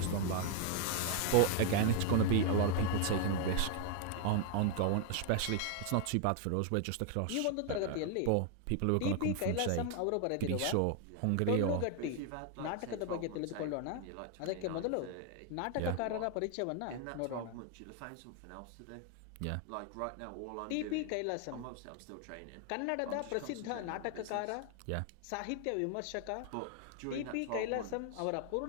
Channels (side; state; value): both; different; correlation 0.00